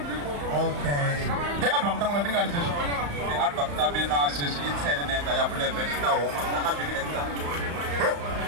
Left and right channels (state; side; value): late; left; 35 ms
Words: Okay. The album tangu natinga ni session. The album tabi na session itene nenda ya bule benita o manga bigi nenda.